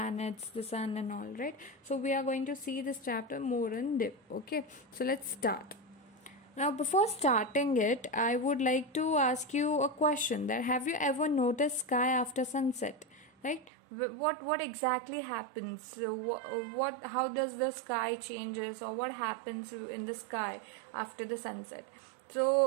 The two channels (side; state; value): left; drops out; at 13.7 s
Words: the sun and all, right? So we are going to see this chapter more in depth. Okay, so let's start. Now before starting it, I would like to ask you a question, that have you ever noticed sky after sunset? Right, what exactly happens? What how does the sky changes, or what happens in the sky after the sunset?